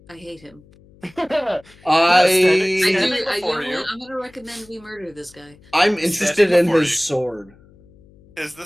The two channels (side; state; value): left; noise; hum, 27 dB below the sound